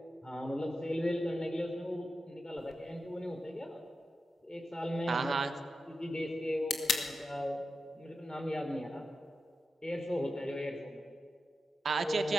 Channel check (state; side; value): normal; both; correlation 0.91